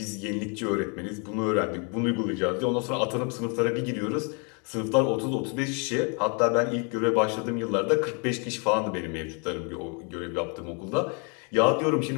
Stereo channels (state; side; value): quieter; right; 35.8 dB